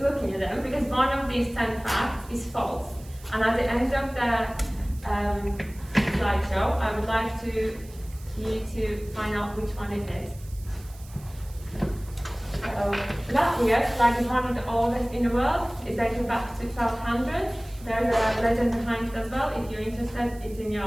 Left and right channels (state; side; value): noise; right; hiss, 22 dB below the sound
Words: looking at them, because one of these 10 facts is false. And at the end of the slideshow, I would like you to find out which one it is. Latvia, like is one of the oldest in the world, is dating back to 1200. There's a legend behind it as well. If you're interested, it's in